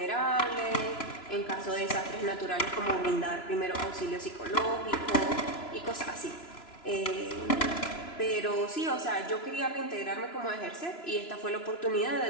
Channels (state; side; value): late; right; 3.0 ms